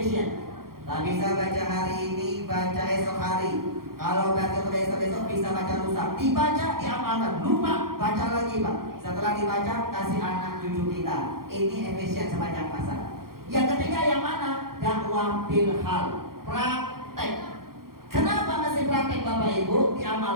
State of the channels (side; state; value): left; late; 0.93 ms